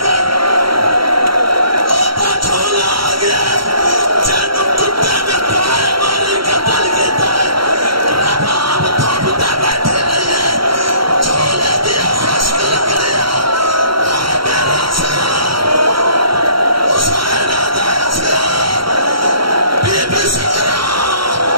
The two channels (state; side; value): late; left; 0.74 ms